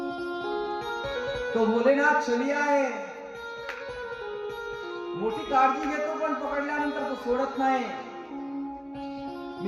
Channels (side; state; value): both; identical; correlation 1.00